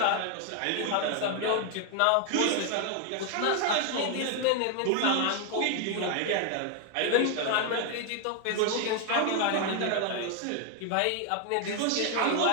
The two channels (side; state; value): both; different; correlation 0.01